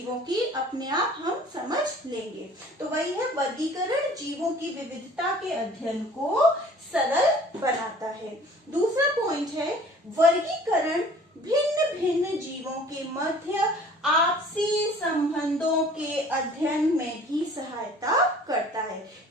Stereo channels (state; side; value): normal; both; correlation 0.50